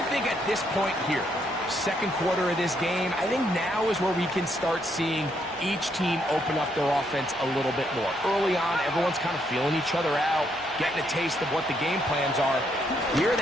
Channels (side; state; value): both; normal; correlation 0.74